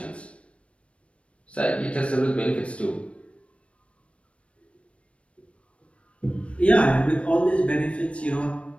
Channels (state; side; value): late; right; 0.061 ms